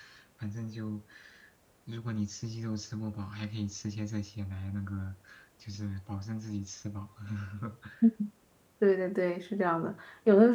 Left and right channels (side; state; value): both; identical; correlation 1.00